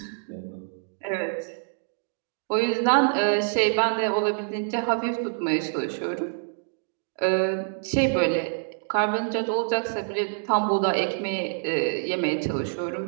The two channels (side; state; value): left; silent; digital silence